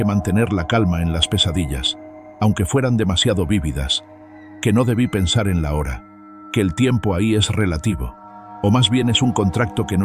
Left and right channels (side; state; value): both; identical; correlation 1.00